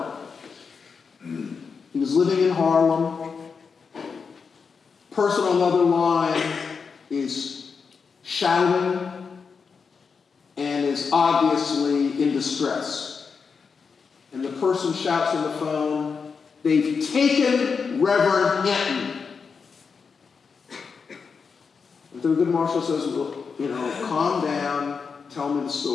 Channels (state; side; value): quieter; right; 5.5 dB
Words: He was living in Harlem. Person on the other line is shouting and is obviously in distress. And the person shouts on the phone, "They've taken Reverend Hinton." And Thurgood Marshall says, "Well, calm down, tell me the